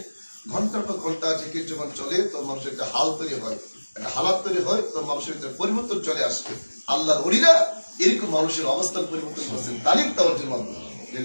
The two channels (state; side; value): inverted; both; correlation -1.00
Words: ঘন্টার পর ঘন্টা জিকির যখন চলে তো মানুষের একটা হাল তৈরি হয়, একটা হালাত তৈরি হয়, তো মানুষের ভিতরে পরিবর্তন চলে আসবে। আল্লাহর ওলিরা এরকম মানুষের অবস্থান পরিবর্তন করছেন তালিম তাওয়াজ্জুর মাধ্যমে।